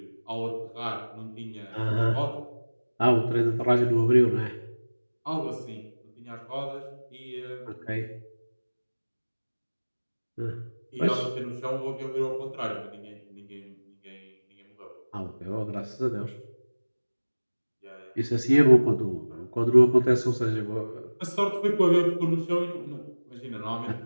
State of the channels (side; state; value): both; inverted; correlation -1.00